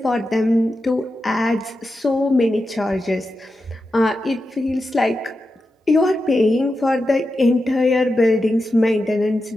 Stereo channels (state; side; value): normal; both; correlation 0.90